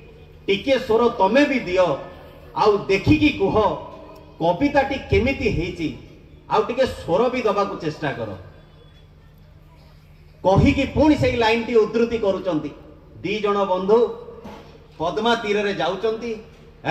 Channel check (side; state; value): both; identical; correlation 1.00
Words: टिके स्वर तमे भी दियो आउ देखिकी कुह कविताटी केमिति हेची आउ टिके स्वर भी दबा को चेष्टा करो कहिकी पुणी से लाइन टी उद्धृति करूचंती। दी जण बंधु पद्मा तीर रे जाउचंती